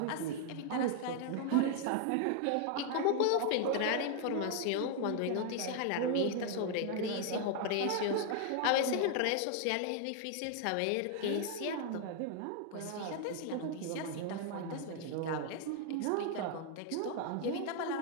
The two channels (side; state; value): both; different; correlation 0.00